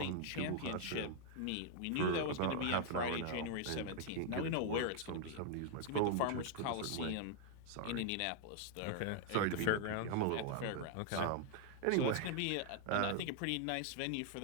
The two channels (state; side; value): different; both; correlation 0.00